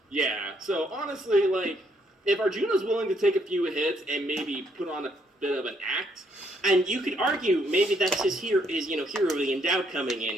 Yeah, so honestly, like, if Arjuna's willing to take a few hits and maybe put on a bit of an act, And you could argue maybe that's his hero of the endowed coming in.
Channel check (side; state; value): both; normal; correlation 0.71